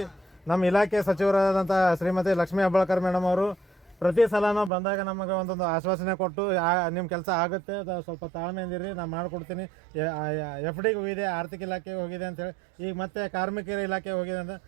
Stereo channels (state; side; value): drops out; left; at 4.7 s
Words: ನಮ್ಮ ಇಲಾಖೆ ಸಚಿವರಾದಂಥ ಶ್ರೀಮತಿ ಲಕ್ಷ್ಮೀ ಹೆಬ್ಬಾಳ್ಕರ್ ಮೇಡಮ್ ಅವರು ಪ್ರತಿ ಸಲನೂ ಬಂದಾಗ ನಮಗೆ ಒಂದೊಂದು ಆಶ್ವಾಸನೆ ಕೊಟ್ಟು ನಿಮ್ಮ ಕೆಲಸ ಆಗುತ್ತೆ, ಸ್ವಲ್ಪ ತಾಳ್ಮೆಯಿಂದಿರಿ, ನಾನು ಮಾಡಿಕೊಡ್ತೀನಿ. FDಗೆ ಹೋಗಿದೆ, ಆರ್ಥಿಕ ಇಲಾಖೆಗೆ ಹೋಗಿದೆ ಅಂತೇಳಿ, ಈಗ ಮತ್ತೆ ಕಾರ್ಮಿಕರ ಇಲಾಖೆ ಹೋಗಿದೆ ಅಂತ.